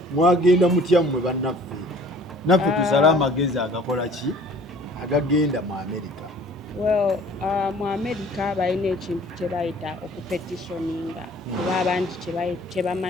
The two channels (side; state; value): both; normal; correlation 0.51